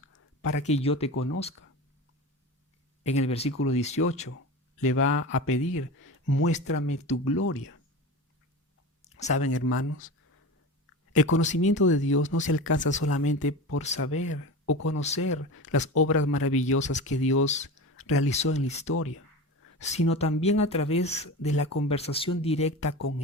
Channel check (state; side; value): normal; both; correlation 0.28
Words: para que yo te conozca. En el versículo 18 le va a pedir, muéstrame tu gloria. ¿Saben, hermanos? El conocimiento de Dios no se alcanza solamente por saber o conocer las obras maravillosas que Dios realizó en la historia, sino también a través de la conversación directa con